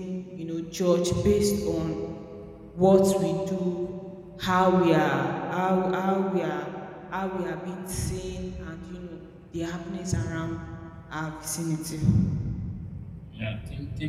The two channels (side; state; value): both; identical; correlation 1.00